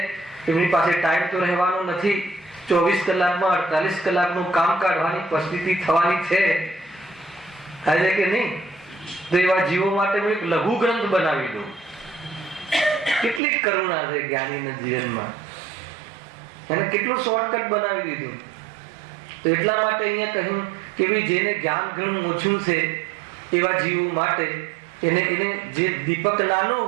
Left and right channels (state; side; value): drops out; left; at 13.4 s